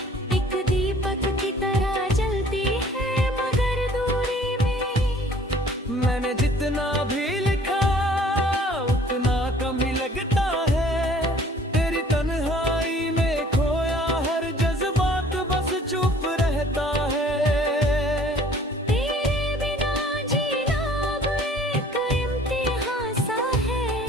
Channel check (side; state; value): both; normal; correlation 0.53